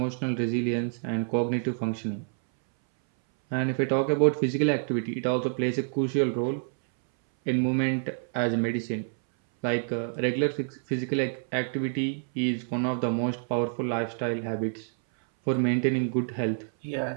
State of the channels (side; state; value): left; silent; 60 dB below the other